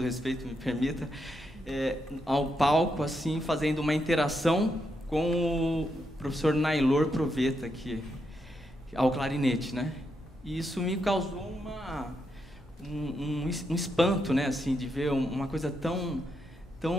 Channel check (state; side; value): normal; both; correlation 0.82